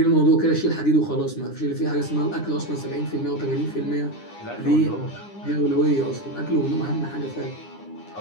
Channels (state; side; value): late; right; 9.8 ms